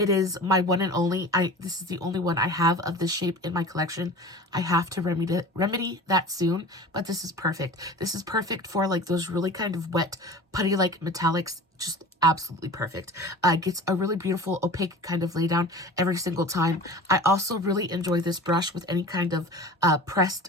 is my one and only. This is the only one I have of this shape in my collection. I have to remedy that soon, but this is perfect. This is perfect for like those really kind of wet putty like metallics. Just absolutely perfect. Gets a really beautiful opaque kind of lay down every single time. I also really enjoy this brush with any kind of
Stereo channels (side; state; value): both; normal; correlation 0.38